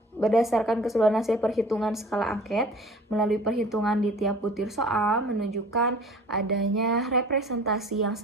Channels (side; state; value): both; normal; correlation 0.46